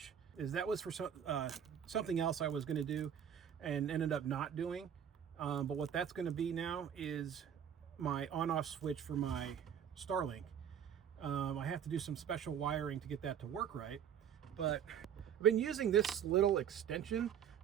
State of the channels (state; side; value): quieter; left; 8.7 dB